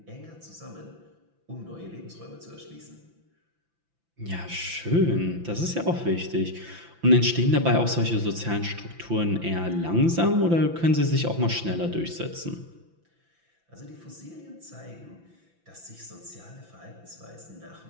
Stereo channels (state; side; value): late; left; 5.9 ms